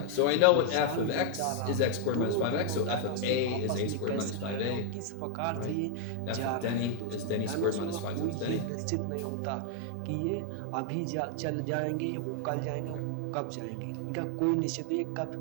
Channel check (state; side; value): different; both; correlation 0.00